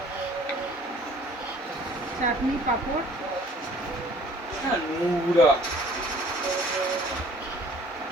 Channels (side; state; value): both; normal; correlation 0.54